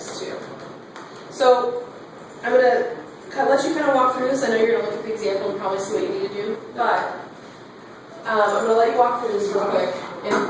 2. So I'm going to let you kind of walk through this. I know you're going to look at the example and probably see what you need to do, but I'm going to let you walk through this real quick and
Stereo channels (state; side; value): identical; both; correlation 1.00